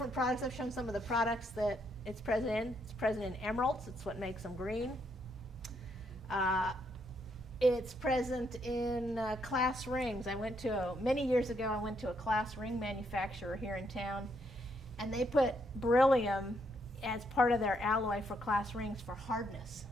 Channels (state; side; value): normal; both; correlation 0.75